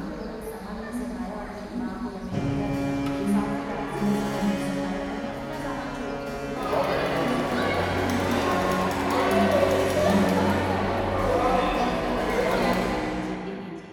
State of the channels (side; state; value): both; identical; correlation 1.00